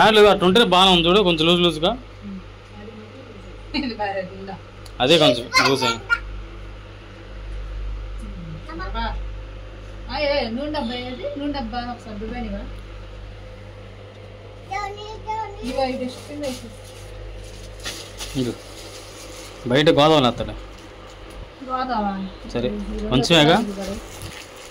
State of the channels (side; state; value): both; identical; correlation 1.00